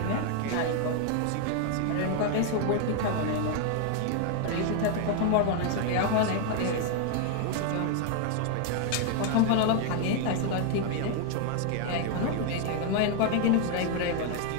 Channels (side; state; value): both; different; correlation 0.00